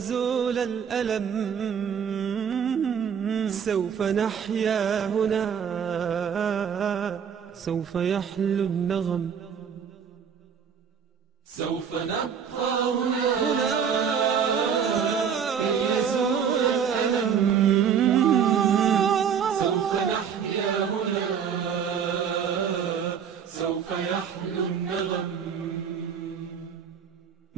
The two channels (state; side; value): quieter; left; 7.4 dB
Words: الألم، سوف نحيا هنا، سوف يحلو النغم. سوف نبقى هنا كي يزول الألم، سوف نحيا هنا، سوف يحلو النغم.